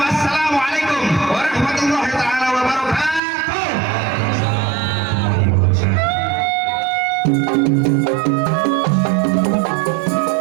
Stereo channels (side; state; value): left; drops out; at 3.2 s